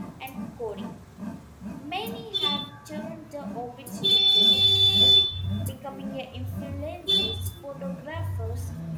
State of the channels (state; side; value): identical; both; correlation 1.00